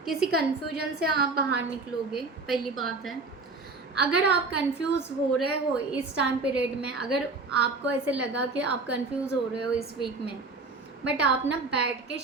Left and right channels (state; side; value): quieter; left; 3.7 dB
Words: किसी कंफ्यूजन से आप बाहर निकलोगे, पहली बात है। अगर आप कंफ्यूज हो रहे हो इस टाइम पीरियड में, अगर आपको ऐसे लगा कि आप कंफ्यूज हो रहे हो इस वीक में, बट आप ना बैठ के